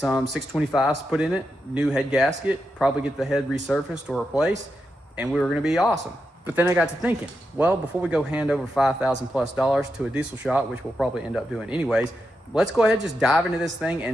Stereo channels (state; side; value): normal; both; correlation 0.86